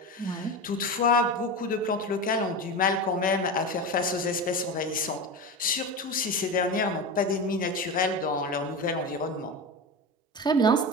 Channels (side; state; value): both; normal; correlation 0.23